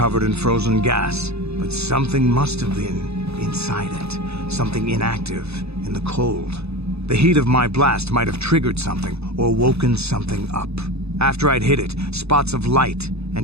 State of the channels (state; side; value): late; left; 0.79 ms